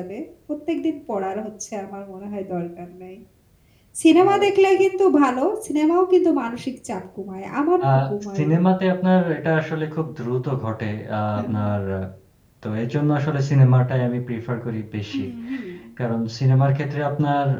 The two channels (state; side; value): identical; both; correlation 1.00